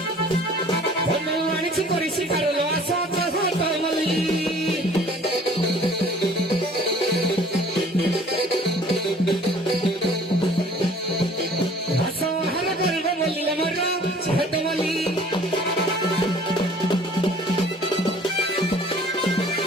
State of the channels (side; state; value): both; normal; correlation 0.51